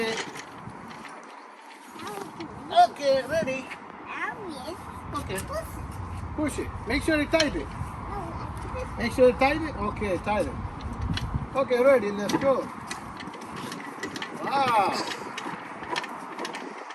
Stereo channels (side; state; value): both; identical; correlation 1.00